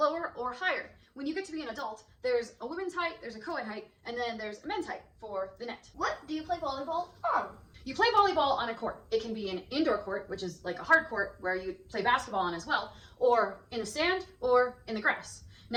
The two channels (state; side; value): identical; both; correlation 1.00